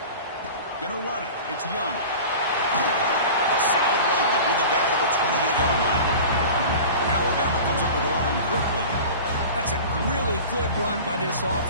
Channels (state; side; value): inverted; both; correlation -0.36